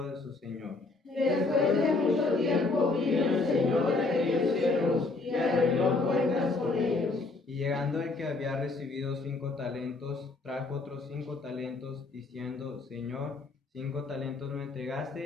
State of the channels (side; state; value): right; quieter; 3.5 dB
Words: de su señor. Después de mucho tiempo vino el señor de aquellos siervos y arregló cuentas con ellos. Y llegando el que había recibido 5 talentos, trajo otros 5 talentos, diciendo: Señor, 5 talentos me